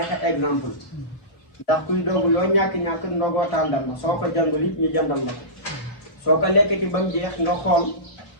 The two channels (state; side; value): late; right; 4.3 ms